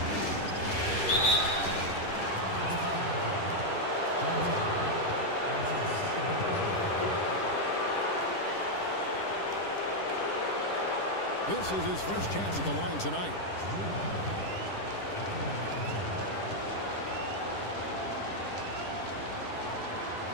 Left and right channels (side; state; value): right; late; 10 ms